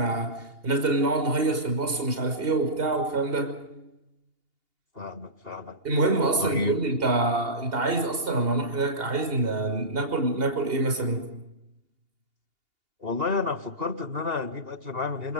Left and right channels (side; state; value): left; late; 2.8 ms